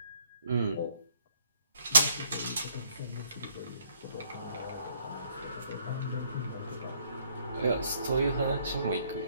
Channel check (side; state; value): both; inverted; correlation -0.66